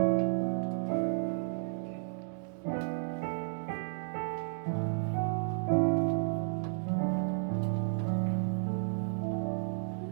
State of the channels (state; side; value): silent; left; digital silence